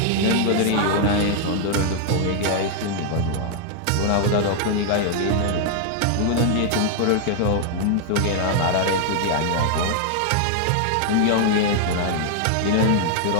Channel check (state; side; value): different; both; correlation 0.00